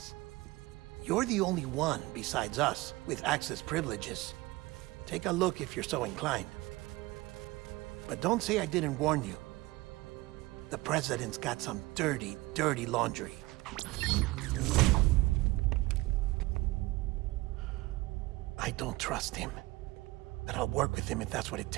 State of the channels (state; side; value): quieter; left; 20.6 dB